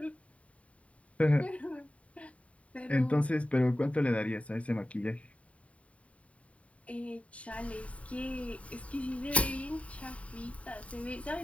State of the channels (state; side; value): late; right; 0.066 ms